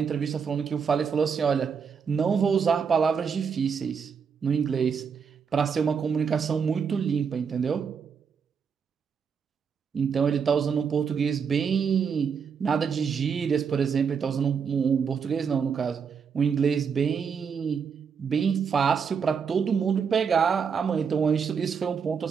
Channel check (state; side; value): quieter; left; 6.4 dB